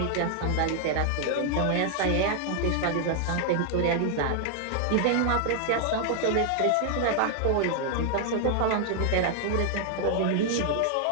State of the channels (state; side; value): different; both; correlation 0.00